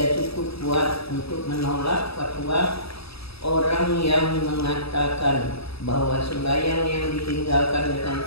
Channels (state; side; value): late; right; 0.77 ms